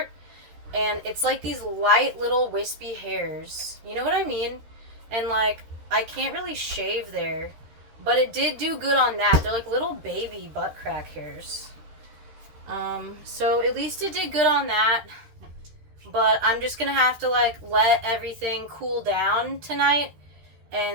And it's like these light little wispy hairs. You know what I mean? And, like, I can't really shave there. But it did do good on that. They're like little baby butt crack hairs. So at least it did good on that. But I'm just gonna have to, like, let everything cool down tonight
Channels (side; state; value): left; late; 13 ms